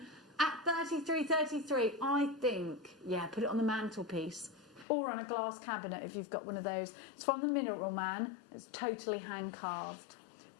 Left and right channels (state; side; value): drops out; right; at 4.9 s